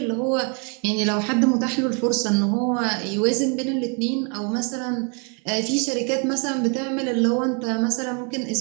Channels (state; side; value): quieter; left; 37.0 dB